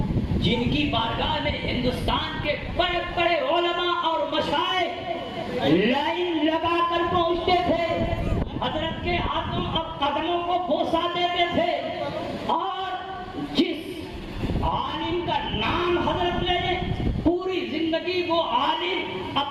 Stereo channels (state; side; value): identical; both; correlation 1.00